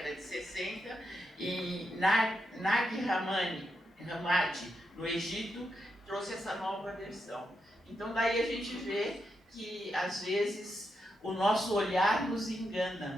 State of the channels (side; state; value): both; normal; correlation 0.84